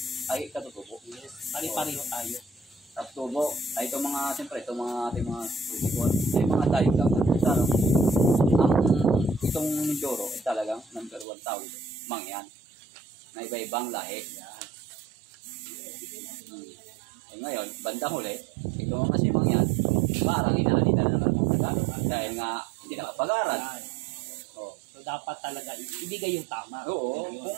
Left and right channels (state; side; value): drops out; left; at 11.2 s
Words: ay katutubo. Yes. Pari-pareho tayo. Tapos tubo, ay itong mga, siyempre, itong mga ating mga politikon, ay mga tayo lang. Sana, itong Mindoro ay talagang number 1 tao dito, mangyan, na iba-ibang lahi. Eh ngayon, bandang huli, itong mga simang yan, parang inaalita na naman ng Tagalog. Dahil nga, hindi nakapag-aral. Oh. So dapat talaga ibigay yung tama. Oo,